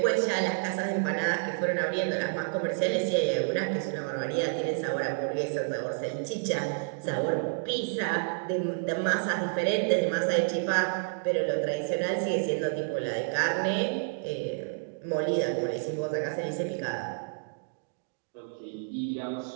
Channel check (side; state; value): left; silent; digital silence